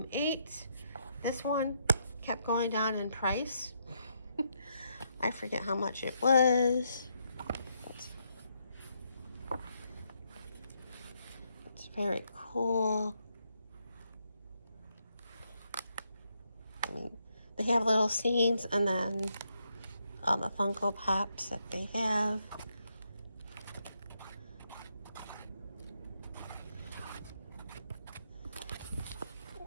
8. This one kept going down in price. I forget how much it was. It's very cool. They have little scenes, and then all the Funko Pops that they have.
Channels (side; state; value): both; inverted; correlation -0.77